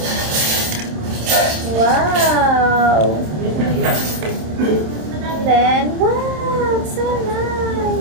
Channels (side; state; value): left; late; 27 ms